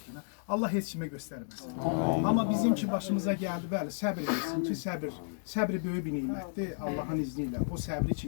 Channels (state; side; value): silent; right; 56 dB below the other